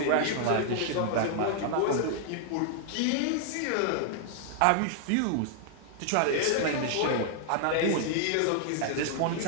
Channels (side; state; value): both; different; correlation -0.01